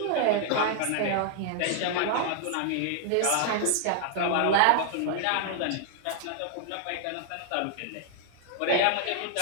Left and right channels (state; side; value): different; both; correlation 0.00